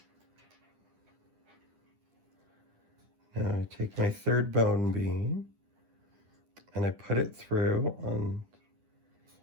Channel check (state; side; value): late; left; 10 ms